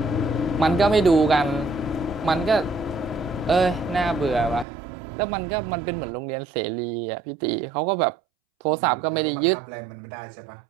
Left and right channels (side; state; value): left; drops out; at 4.7 s